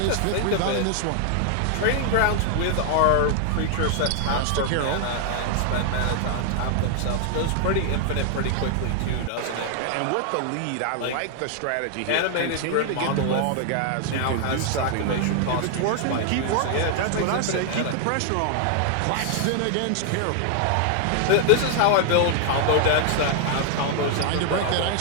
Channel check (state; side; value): different; both; correlation 0.00